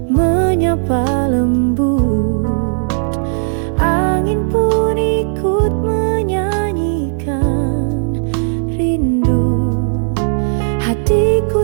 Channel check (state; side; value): silent; left; digital silence